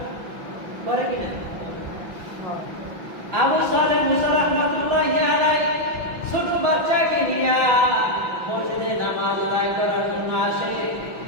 করে কিনা? আবু সালেহ মুসা রাহমাতুল্লাহি আলাইহি ছোট বাচ্চাকে নিয়ে মসজিদে নামাজ আদায় করার জন্য আসে।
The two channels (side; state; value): left; late; 5.8 ms